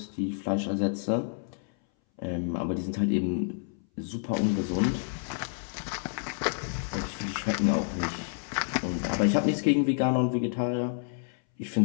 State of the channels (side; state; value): right; silent; 58 dB below the other